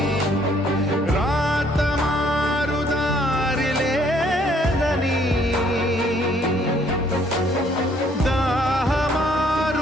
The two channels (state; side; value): normal; both; correlation 0.64